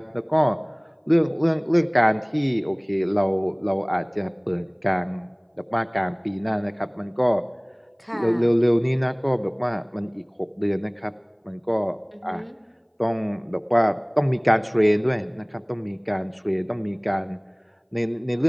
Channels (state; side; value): identical; both; correlation 1.00